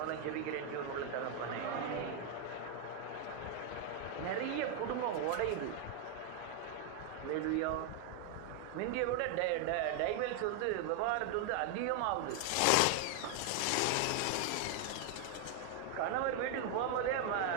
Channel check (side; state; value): both; different; correlation 0.00